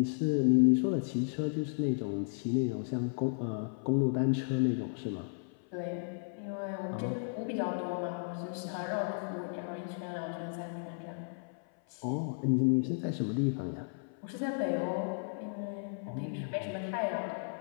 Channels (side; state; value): right; silent; 55 dB below the other